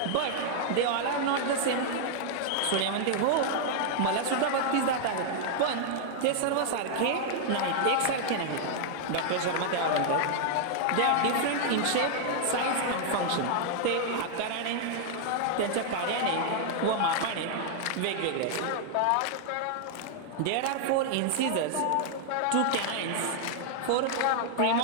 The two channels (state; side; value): different; both; correlation -0.01